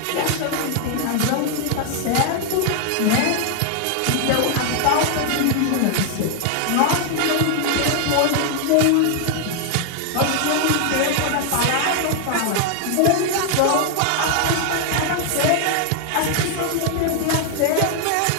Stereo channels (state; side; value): different; both; correlation 0.00